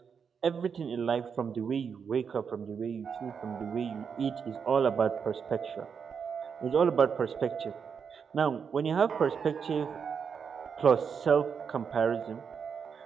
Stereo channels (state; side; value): quieter; left; 6.5 dB